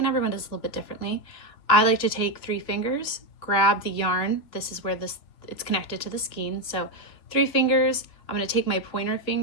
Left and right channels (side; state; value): right; late; 2.9 ms